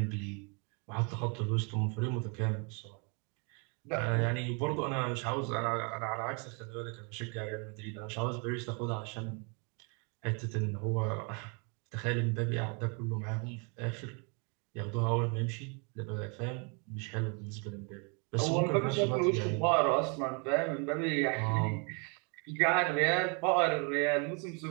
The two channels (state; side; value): quieter; left; 35.3 dB